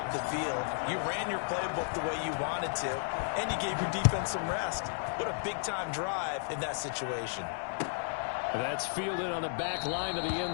the field. You ran your playbook the way you wanted to, and you gave your defense some rest. What a big-time drive in that situation. That's fielded on the back line of the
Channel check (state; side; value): silent; right; digital silence